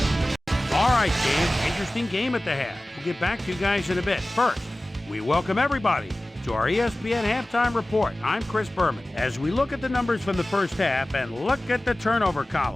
All right, game. Interesting game at the half. We'll get back to you guys in a bit. First, we welcome everybody to our ESPN halftime report. I'm Chris Berman. As we look at the numbers from the first half and look at the turnover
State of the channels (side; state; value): both; normal; correlation 0.97